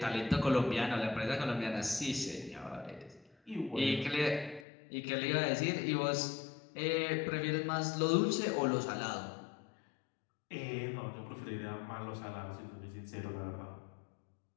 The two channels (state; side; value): drops out; right; at 4.7 s